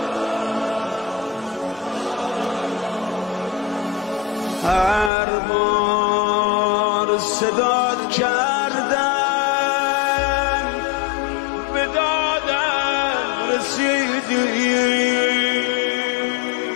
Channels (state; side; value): drops out; right; at 5.1 s